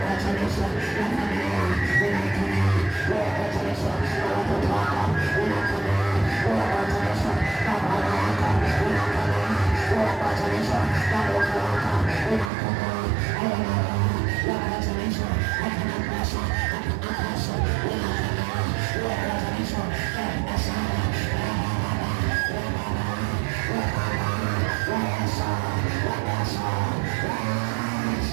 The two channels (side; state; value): left; drops out; at 12.5 s